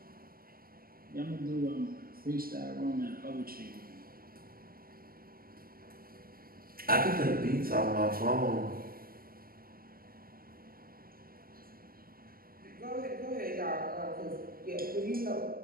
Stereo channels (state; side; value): late; left; 0.42 ms